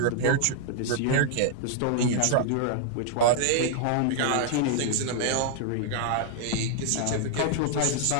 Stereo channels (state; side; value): different; both; correlation -0.01